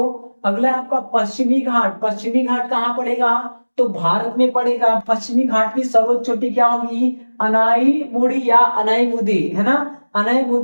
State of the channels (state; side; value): inverted; both; correlation -1.00